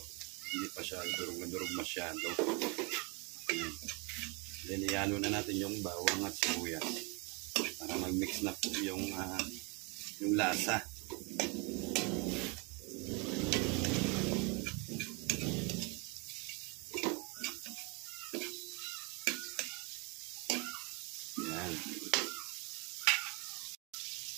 pa siya durug masyado. Then ihalo na natin yung bawang at sibuyas para mag-mix na po yung lasa. Yan.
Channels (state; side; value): quieter; left; 30.3 dB